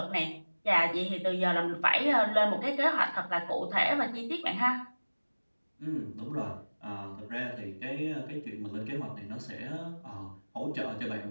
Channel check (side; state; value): both; inverted; correlation -1.00